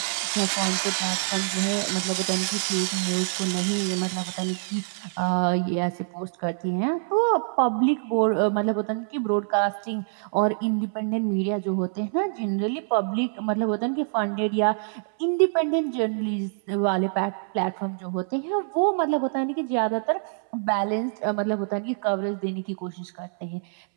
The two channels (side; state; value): left; silent; 61 dB below the other